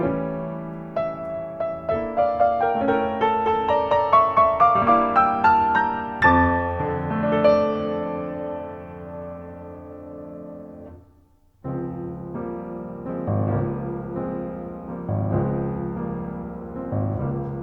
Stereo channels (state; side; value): identical; both; correlation 1.00